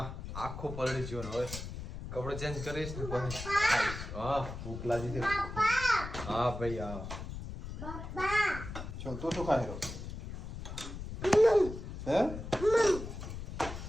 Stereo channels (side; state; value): left; noise; rumble, 8 dB below the sound